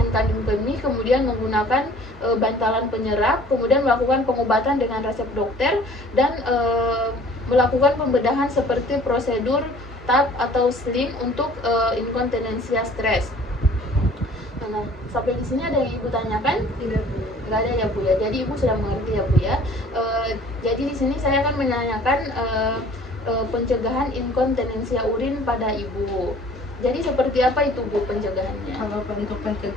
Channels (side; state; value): both; normal; correlation 0.52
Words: kandung kemih, kemudian menggunakan bantalan penyerap, kemudian melakukan pengobatan dengan resep dokter dan melakukan pembedahan seperti prosedur TAP atau sling untuk inkontinensia stres. Nah, sampai di sini ada yang Ibu tanyakan? Tidak Bu. Nggak ada ya Bu ya. Jadi Ibu sudah mengerti ya Bu ya. Jadi di sini saya akan menanyakan pencegahan inkontinensia urin pada Ibu. Jadi seperti apa itu Bu pencegahannya? Kalau untuk